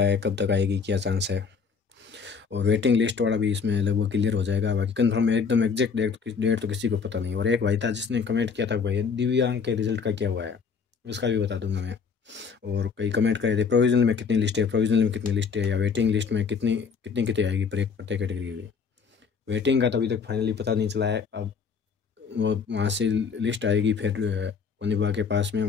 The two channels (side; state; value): right; quieter; 5.7 dB